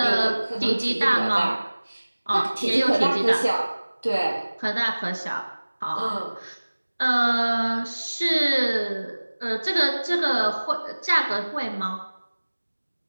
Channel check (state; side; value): inverted; both; correlation -1.00